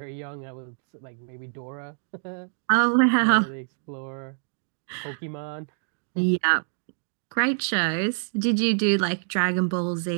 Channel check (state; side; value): silent; left; digital silence